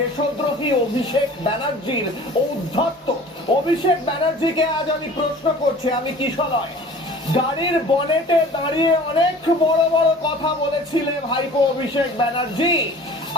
অভিষেক ব্যানার্জির ঔদ্ধত্য। অভিষেক ব্যানার্জিকে আজ আমি প্রশ্ন করছি, আমি কিশলয়, গাড়ির বনেটে দাঁড়িয়ে অনেক বড় বড় কথা বলেছিলে ভাইপো অভিষেক ব্যানার্জি,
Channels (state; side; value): normal; both; correlation 0.45